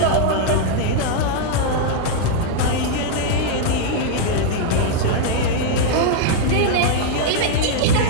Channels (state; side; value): different; both; correlation -0.01